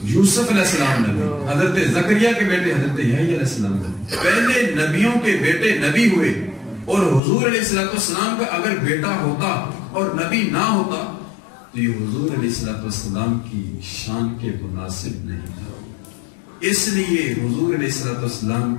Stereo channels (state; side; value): drops out; right; at 7.2 s